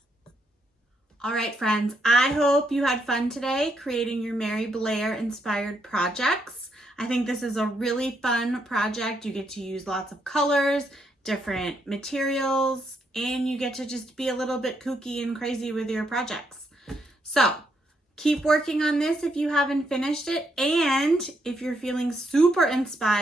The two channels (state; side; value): normal; both; correlation 0.77